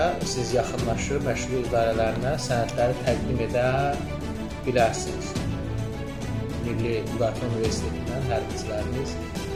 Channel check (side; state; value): both; identical; correlation 1.00